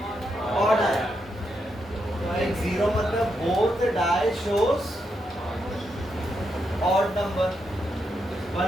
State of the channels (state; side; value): normal; both; correlation 0.82